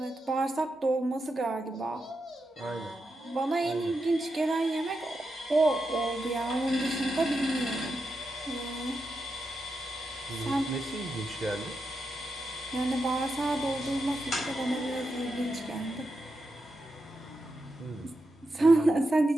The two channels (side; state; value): both; normal; correlation 0.87